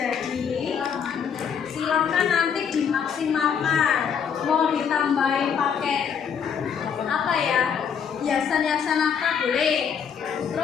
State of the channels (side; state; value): right; quieter; 7.3 dB